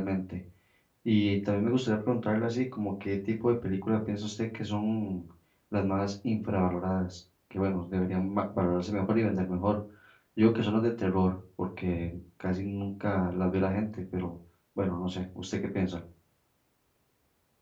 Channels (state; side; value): identical; both; correlation 1.00